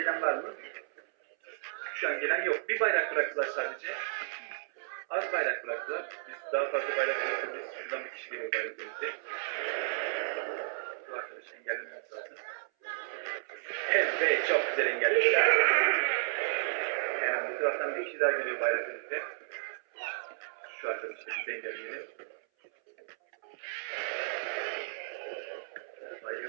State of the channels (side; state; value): left; silent; 56 dB below the other